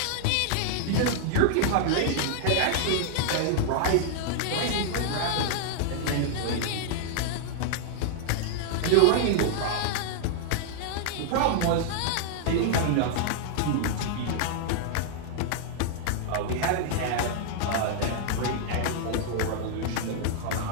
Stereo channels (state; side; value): different; both; correlation -0.01